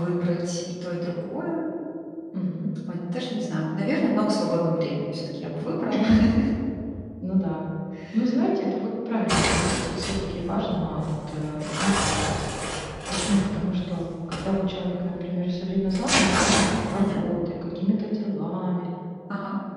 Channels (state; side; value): identical; both; correlation 1.00